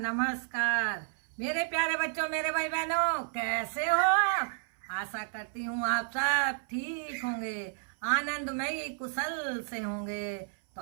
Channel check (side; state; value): left; silent; 57 dB below the other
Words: मेरे प्यारे बच्चों, मेरे भाई बहनों, कैसे हो आप? आशा करती हूँ आप सब ठीक होंगे, आनंदमयी कुशल से होंगे। तो